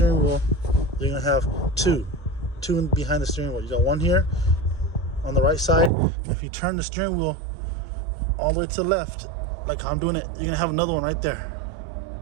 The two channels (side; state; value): left; drops out; at 5.9 s